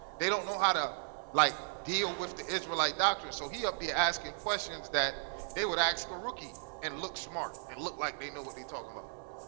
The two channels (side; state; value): left; silent; digital silence